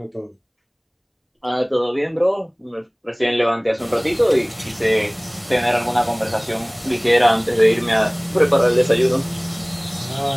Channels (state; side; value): identical; both; correlation 1.00